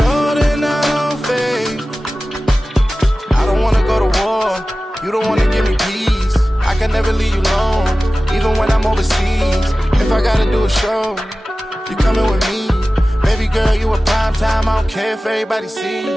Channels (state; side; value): normal; both; correlation 0.96